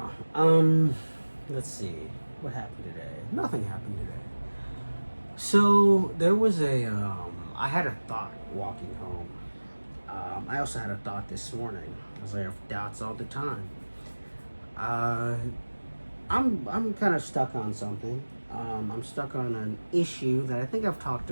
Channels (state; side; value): inverted; both; correlation -1.00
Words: don't know. Let's see. What happened today? Nothing happened today. So there was I had a thought walking home. I also had a thought this morning, as I have doubts all the time. I'm kind of stuck on something. I'm stuck on an issue that I think I've talked